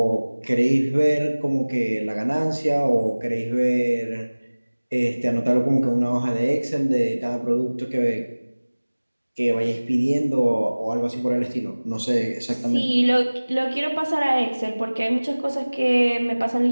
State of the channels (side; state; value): both; inverted; correlation -1.00